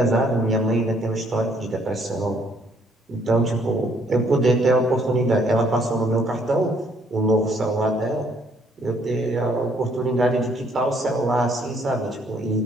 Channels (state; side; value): normal; both; correlation 0.66